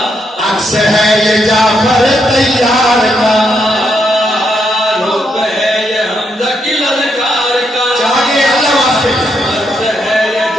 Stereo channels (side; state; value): both; normal; correlation 0.79